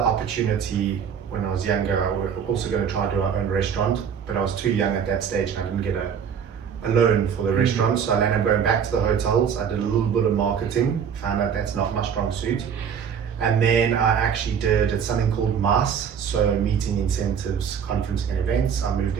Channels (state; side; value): quieter; left; 7.5 dB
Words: when I was younger. I was also going to try to do our own restaurant, but I was too young at that stage and I didn't get a loan for the restaurant. So I ended up going back to the hotels. I did a little bit of marketing, found out that's not my strong suit. And then I actually did something called MAS, so meeting, incentives, conferencing and events. I moved